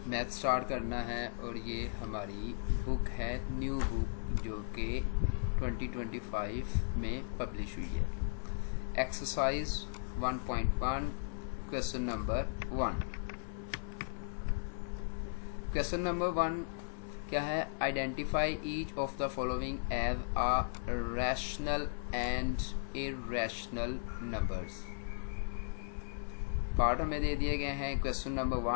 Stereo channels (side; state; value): right; silent; 54 dB below the other